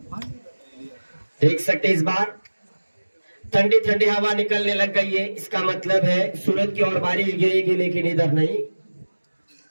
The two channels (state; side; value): inverted; both; correlation -1.00